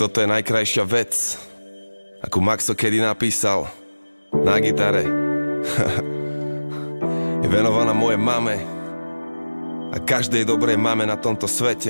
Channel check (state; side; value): inverted; both; correlation -1.00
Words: je najkrajšia vec, akú Maxo kedy napísal na gitare. Je venovaná mojej mame a každej dobrej mame na tomto